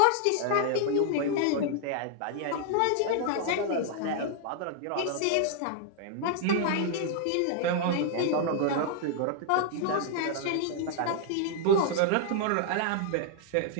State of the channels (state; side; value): different; both; correlation -0.01